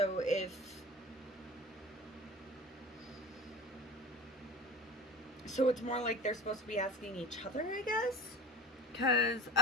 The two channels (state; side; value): normal; both; correlation 0.36